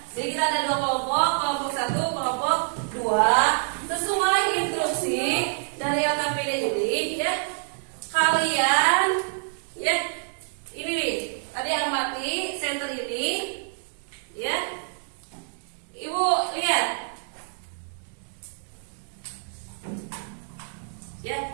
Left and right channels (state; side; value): silent; left; digital silence